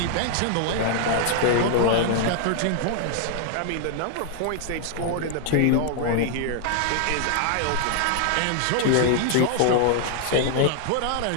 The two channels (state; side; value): different; both; correlation 0.00